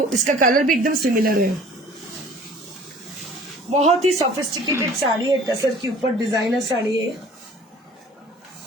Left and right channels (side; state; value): both; normal; correlation 0.49